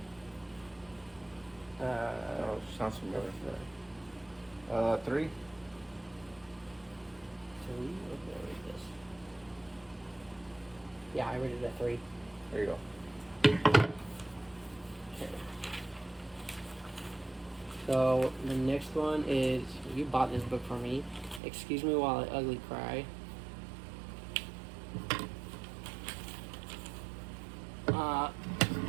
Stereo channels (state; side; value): drops out; left; at 21.4 s